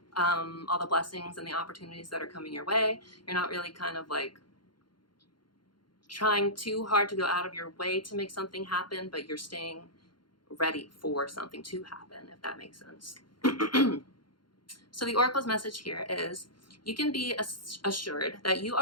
all the blessings and the opportunities that are coming your way. You're not really kind of like trying too hard to go out of your way to make something happen, but you're staying ready for something to happen, if that makes sense. So the Oracle's message here is you can be assured that you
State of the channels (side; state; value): right; late; 0.72 ms